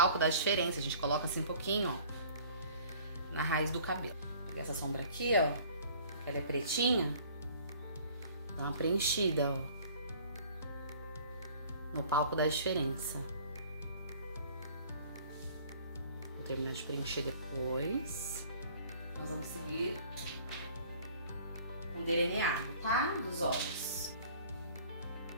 dá diferença, a gente coloca assim um pouquinho, ó, na raiz do cabelo. Vou pegar essa sombra aqui, ó, que ela é pretinha. Dá uma preenchida, ó. No palco dá diferença. Vou terminar de preencher depois. Nós vamos seguir com delineado, tá? Dos olhos.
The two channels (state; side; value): inverted; both; correlation -0.51